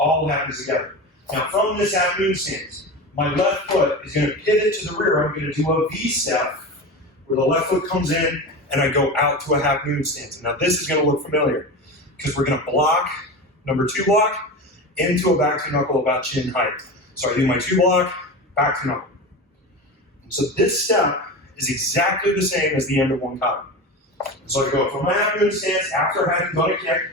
happens together. Now from this half moon stance, my left foot is going to pivot to the rear. I'm going to do a V-step where the left foot comes in and I go out to a half moon stance. And now this is going to look familiar because we're going to block, number 2 block, into a back to knuckle about chin height. So I do my 2 block, back to knuckle. So this step is exactly the same as the end of one kata. So I go from my half moon stance after having done a kick,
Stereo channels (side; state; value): both; normal; correlation 0.26